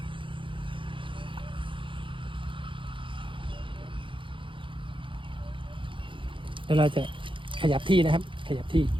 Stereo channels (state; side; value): late; left; 0.25 ms